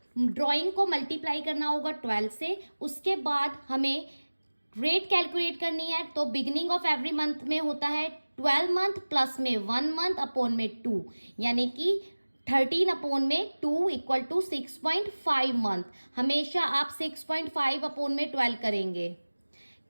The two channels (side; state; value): both; inverted; correlation -1.00